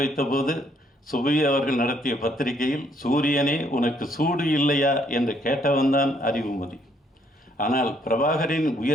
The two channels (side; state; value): both; normal; correlation 0.68